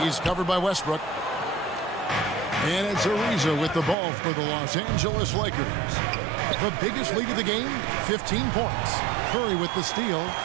He's covered by Westbrook. And it's Ariza with the ball for the Los Angeles Lakers. The biggest lead of the game, 15 points. Curry with the steal.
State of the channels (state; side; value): drops out; left; at 4.0 s